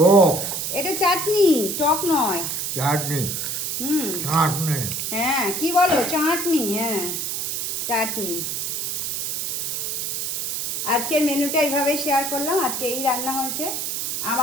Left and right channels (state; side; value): noise; right; hiss, 2 dB below the sound